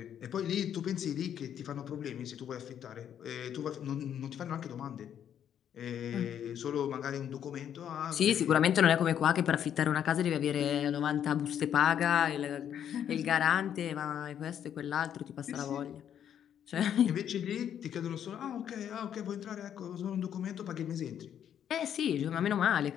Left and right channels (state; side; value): quieter; right; 9.4 dB